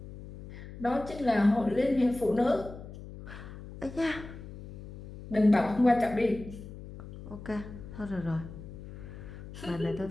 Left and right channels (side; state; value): left; noise; hum, 13 dB below the sound